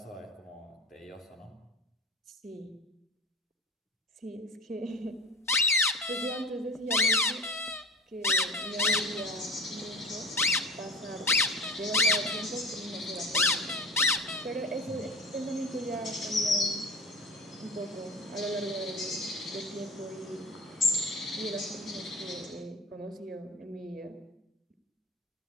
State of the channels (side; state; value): both; normal; correlation 0.34